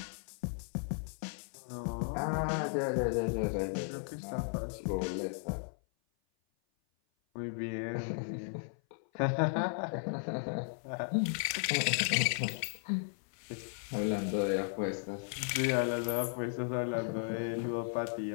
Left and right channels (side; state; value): right; silent; 54 dB below the other